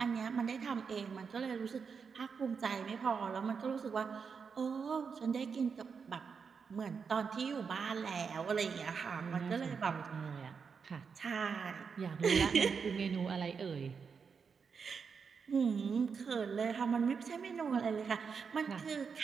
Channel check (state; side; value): quieter; left; 5.8 dB